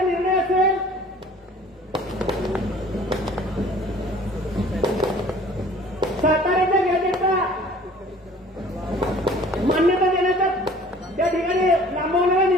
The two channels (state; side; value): normal; both; correlation 0.50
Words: निर्णय असेल, साताऱ्याच्या गॅजेटचा मान्यता देण्याचा त्या ठिकाणी लांबवणारा